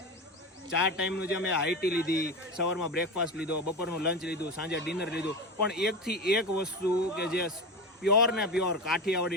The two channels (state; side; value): normal; both; correlation 0.23